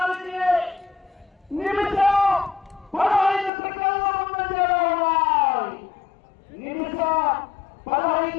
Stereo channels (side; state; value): right; drops out; at 3.5 s